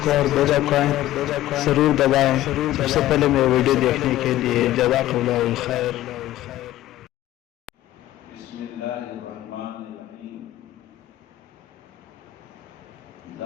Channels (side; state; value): right; quieter; 14.6 dB